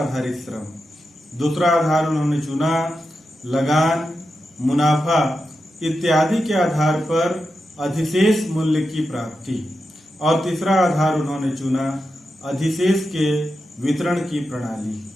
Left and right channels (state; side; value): normal; both; correlation 0.89